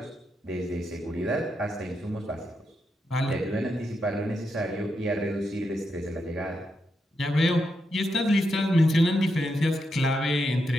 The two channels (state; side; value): normal; both; correlation 0.84